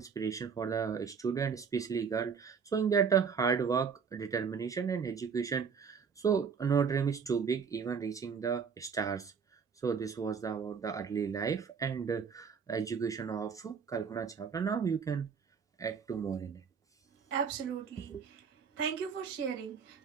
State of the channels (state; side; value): quieter; left; 6.3 dB